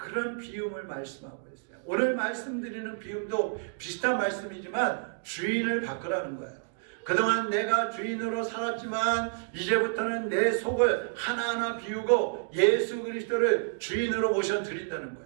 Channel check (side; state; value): left; silent; digital silence